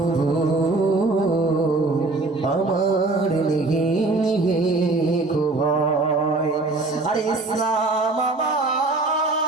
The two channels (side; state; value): left; quieter; 3.3 dB